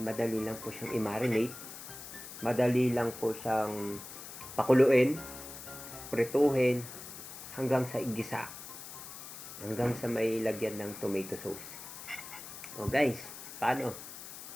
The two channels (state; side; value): noise; left; hiss, 12 dB below the sound